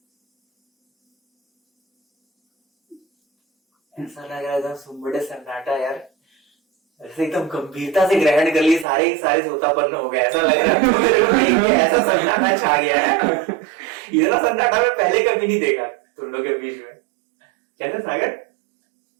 ऐसा लग रहा है एकदम सुम्बड़े सन्नाटा यार, ऐसे एकदम गंभीरता से ग्रहण कर लिए, सारे के सारे सोतापन्न हो गए, ऐसा लग रहा है मेरे को देख के, ऐसा सन्नाटा छा गया है। इतना सन्नाटा मैं पहले कभी नहीं देखा तुम लोग के बीच में। कैसे सागर?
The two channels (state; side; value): drops out; left; at 8.8 s